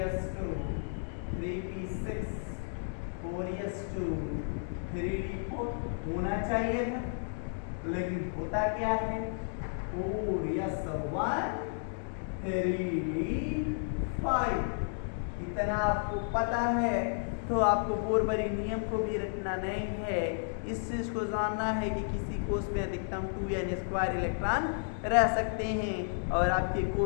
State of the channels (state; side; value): silent; right; digital silence